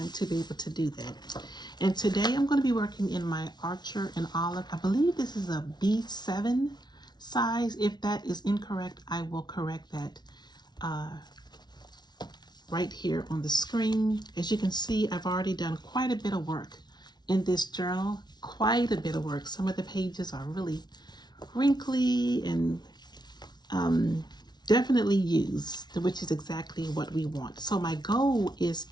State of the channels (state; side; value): late; right; 0.20 ms